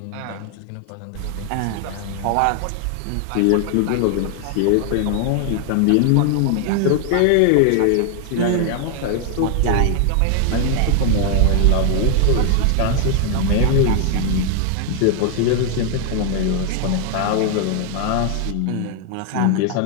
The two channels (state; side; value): different; both; correlation 0.00